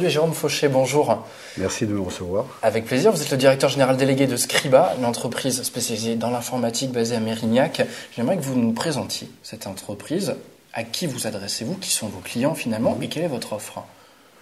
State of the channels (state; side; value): identical; both; correlation 1.00